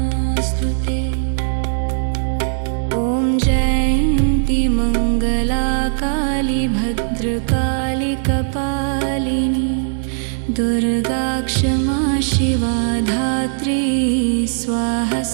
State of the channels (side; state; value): left; silent; digital silence